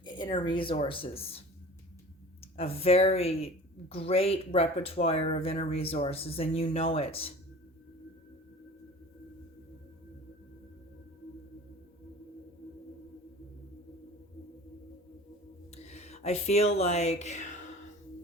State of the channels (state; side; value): normal; both; correlation 0.41